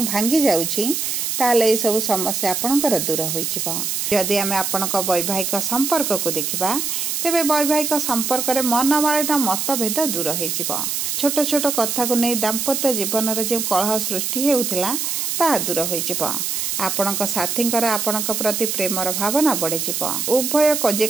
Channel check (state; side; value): noise; right; hiss, 1 dB below the sound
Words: ଭାଙ୍ଗି ଯାଉଛି, ତାହେଲେ ଏସବୁ ସମସ୍ୟା ଆପଣଙ୍କର ଦୂର ହୋଇଯିବ। ଯଦି ଆମେ ଆପଣଙ୍କ ବୈବାହିକ ସମ୍ପର୍କକୁ ଦେଖିବା, ତେବେ ବୈବାହିକ ସମ୍ପର୍କରେ ମନମାଳିନ୍ୟ ମତଭେଦ ଦୂର ହୋଇଯିବ। ଛୋଟ ଛୋଟ କଥାକୁ ନେଇ ଦାମ୍ପତ୍ୟ ଜୀବନରେ ଯେଉଁ କଳହ ସୃଷ୍ଟି ହେଉଥିଲା ତାହା ଦୂର ହୋଇଯିବ। ଆପଣଙ୍କ ସାଥୀଙ୍କର ଆପଣଙ୍କ ପ୍ରତି ପ୍ରେମର ଭାବନା ବଢ଼ିଯିବ। ଉଭୟ